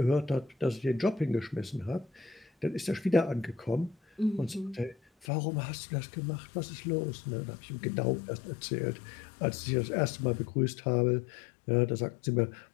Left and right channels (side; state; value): right; drops out; at 5.2 s